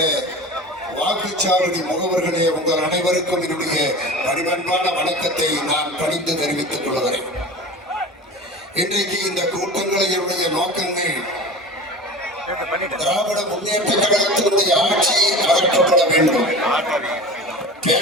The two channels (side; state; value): both; normal; correlation 0.34